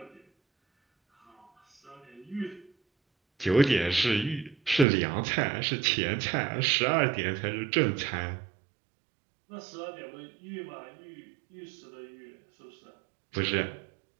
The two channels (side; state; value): left; drops out; at 4.9 s